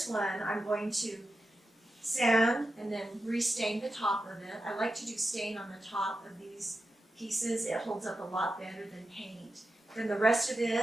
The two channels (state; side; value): normal; both; correlation 0.90